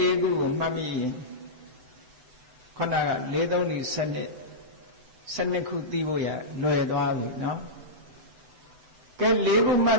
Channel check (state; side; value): late; left; 8.0 ms